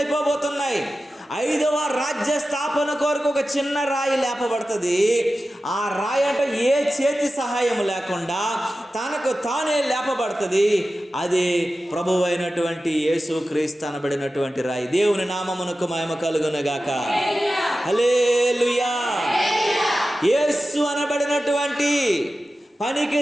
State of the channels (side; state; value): both; normal; correlation 0.94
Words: 5వ రాజ్య స్థాపన కొరకు ఒక చిన్న రాయి లేపబడుతుంది. ఆ రాయి అంటే ఏ చేతి సహాయం లేకుండా తనకు తానే లేపబడుతుంది. అది ప్రభువు అయినటువంటి యేసుక్రీస్తు అనబడినటువంటి రాయి. దేవుని నామమునకు మహిమ కలుగునుగాక. హల్లెలూయా. యేసు అనబడినటువంటి పనికి